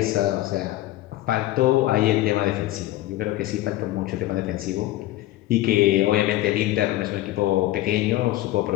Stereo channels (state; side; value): quieter; right; 15.9 dB